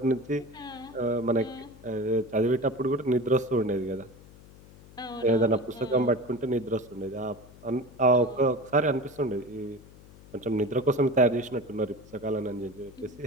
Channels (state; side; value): noise; left; hum, 21 dB below the sound